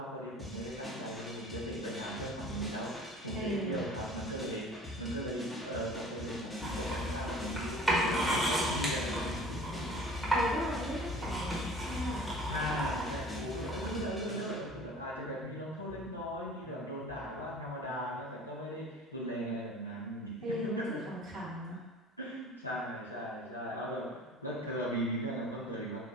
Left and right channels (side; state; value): both; normal; correlation 0.45